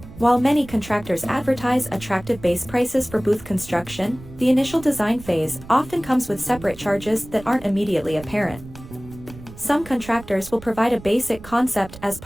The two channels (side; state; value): right; noise; rumble, 17 dB below the sound